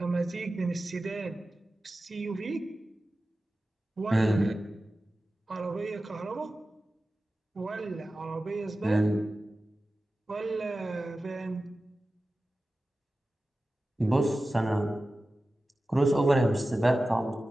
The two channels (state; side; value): normal; both; correlation 0.95